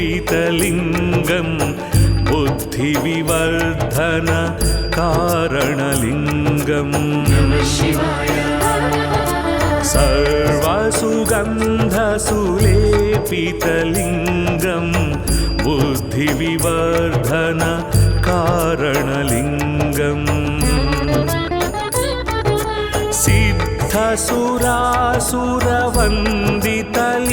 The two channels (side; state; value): both; identical; correlation 1.00